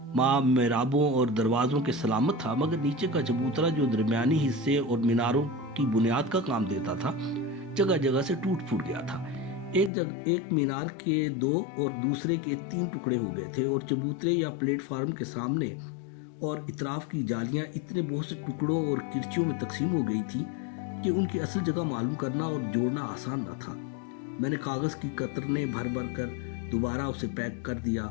माँ मेराबों और दरवाज़ों के सलामत था, मगर नीचे का चबूतरा जो दरमियानी हिस्से और मीनारों की बुनियाद का काम देता था, जगह जगह से टूट फूट गया था। एक मीनार के 2 और दूसरे के 3 टुकड़े हो गए थे और चबूतरे या प्लेटफार्म के सामने और इतराफ की जालियां इतने बहुत से टुकड़ों और किरचियों में तकसीम हो गई थी कि उनकी असल जगह मालूम करना और जोड़ना आसान न था। मैंने कागज़ की कतरने भर भर कर दोबारा उसे पैक कर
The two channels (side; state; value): right; drops out; at 9.9 s